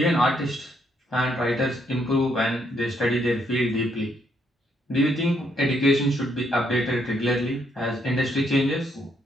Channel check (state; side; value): normal; both; correlation 0.73